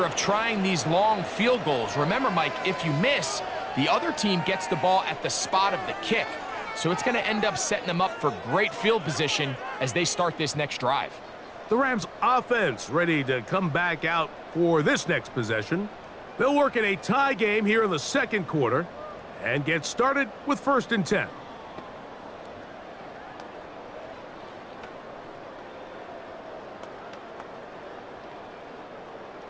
of trying these long field goals. Remember, Mike, if you miss, the other team gets the ball at the spot of the kick. So it's going to end up setting them up for great field position as they start this next drive. The Rams offense ready to come back out for this next possession. They'll work in a tie game here in the second quarter and get started with 1st and 10.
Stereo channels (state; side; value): identical; both; correlation 1.00